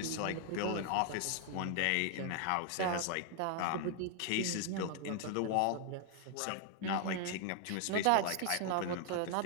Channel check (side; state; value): both; different; correlation 0.00